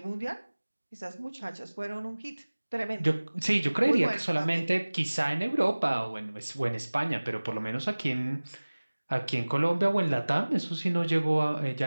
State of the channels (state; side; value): inverted; both; correlation -1.00